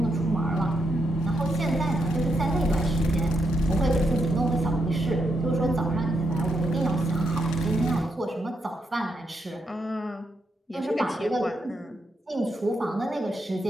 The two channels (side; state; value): both; normal; correlation 0.81